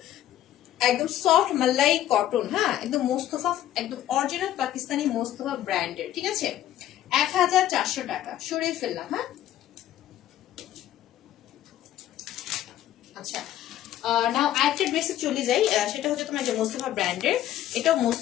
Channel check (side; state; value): right; quieter; 12.6 dB